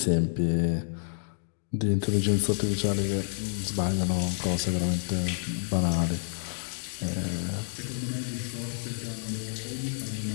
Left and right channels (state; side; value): silent; right; digital silence